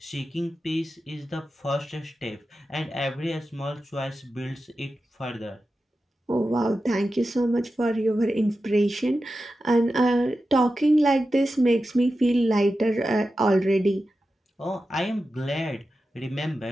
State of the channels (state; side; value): normal; both; correlation 0.92